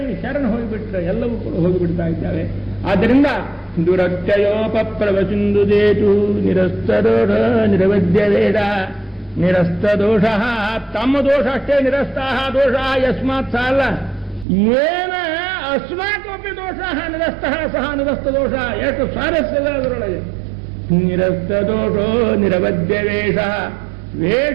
ಶರಣ ಹೋಗಿಬಿಟ್ರೆ ಎಲ್ಲವೂ ಕೂಡ ಹೋಗಿಬಿಡ್ತಾ ಇದ್ದಾವೆ. ಆದ್ದರಿಂದ ದುರತ್ಯಯೋಪಪ್ಲವ ಸಿಂಧು ಸೇತು ನಿರಸ್ತದೋಷ ನಿರವಧ್ಯ ವೇದ ನಿರಸ್ತ ದೋಷ. ತಮ್ಮ ದೋಷ ಅಷ್ಟೇ, ನಿರಸ್ತಾಹ ದೋಷ ಯಸ್ಮಾತ್ ಸಾಲ ಏನ ಅಸ್ಮಾಕಮಪಿ ದೋಷ ನಿರಸ್ತಃ ಸಹ ನಿರಸ್ತ ದೋಷ. ಎಷ್ಟು ಸ್ವಾರಸ್ಯದ ಅದರೊಳಗೆ. ನಿರಸ್ತ ದೋಷೋ ನಿರವಧ್ಯ ವೇಷ.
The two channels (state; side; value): drops out; left; at 14.5 s